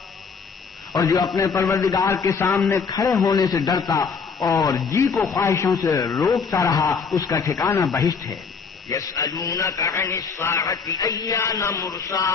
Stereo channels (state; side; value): quieter; right; 5.6 dB